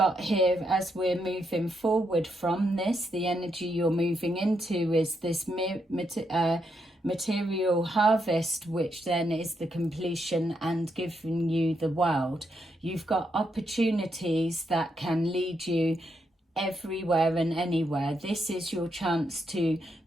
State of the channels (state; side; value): normal; both; correlation 0.80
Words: here, as we're moving forward from this, the energy you're moving into is this material harvest, which then is the completion and giving you the world. You've got opportunities that can lead you everywhere and anywhere. This is your chance to